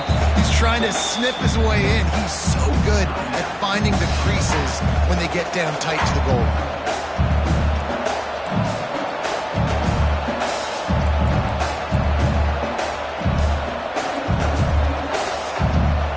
He's trying to snip his way in. He's so good at finding the creases when they get down tight to the goal.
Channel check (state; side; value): identical; both; correlation 1.00